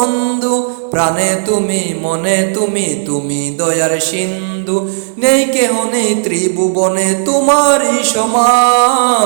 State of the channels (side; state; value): left; silent; digital silence